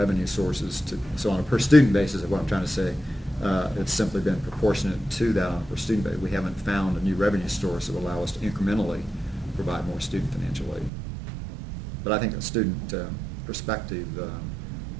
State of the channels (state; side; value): drops out; left; at 10.9 s